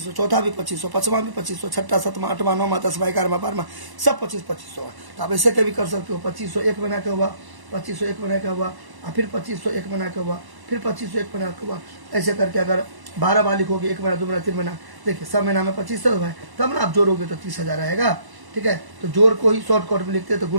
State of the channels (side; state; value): left; late; 1.0 ms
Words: चौथा भी 2500, पाँचवा भी 2500, छठा, सातवां, आठवां, नौवां, 10वां, 11वां, 12वां, सब 2500 है। तो आप ऐसे कभी कर सकते हो, 2500 एक महीना का हुआ, 2500 एक महीना का हुआ, और फिर 2500 एक महीना का हुआ, फिर 2500 एक महीना का हुआ, ऐसे करके अगर 12 बार लिखोगे, एक महीना, 2 महीना, 3 महीना, देखिए सब महीना में 2500 है, तब ना आप जोड़ोगे तो 30,000 आएगा, ठीक है। तो जोड़ को ही शॉर्टकट में लिखते हैं तो